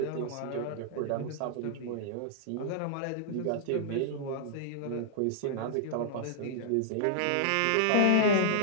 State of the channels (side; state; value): both; different; correlation -0.01